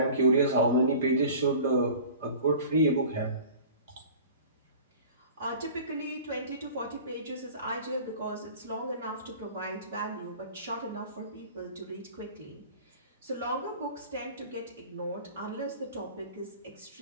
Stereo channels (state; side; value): inverted; both; correlation -0.42